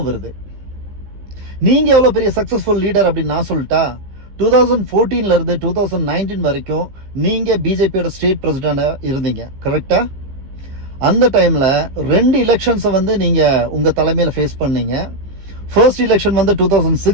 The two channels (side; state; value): left; late; 15 ms